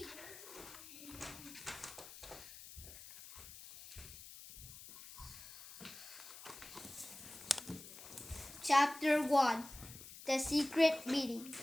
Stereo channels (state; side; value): noise; left; hiss, 15 dB below the sound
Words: Chapter 1: The Secret Meeting.